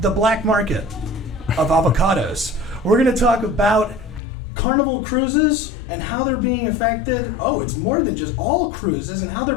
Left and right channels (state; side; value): drops out; right; at 4.2 s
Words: the black market of avocados. We're going to talk about Carnival cruises and how they're being affected. Oh, it's more than just all cruises and how they're